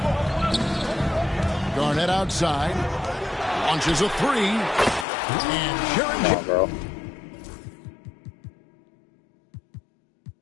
Garnett outside. Launches a three. And Sharon Come on, bro.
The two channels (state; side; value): drops out; right; at 5.1 s